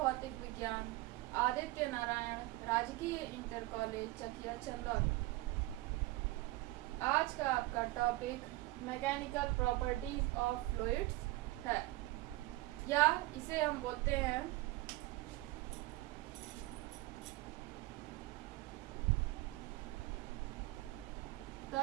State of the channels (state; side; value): quieter; left; 19.6 dB